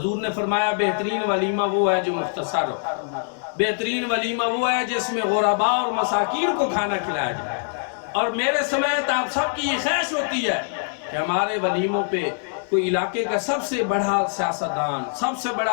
نے فرمایا بہترین ولیمہ وہ ہے جو مختصر ہو، بہترین ولیمہ وہ ہے جس میں غرباء اور مساکین کو کھانا کھلایا جائے، اور میرے سمیت آپ سب کی یہ خواہش ہوتی ہے کہ ہمارے ولیموں پہ کوئی علاقے کا سب سے بڑا سیاستدان، سب سے بڑا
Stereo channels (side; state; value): right; silent; 63 dB below the other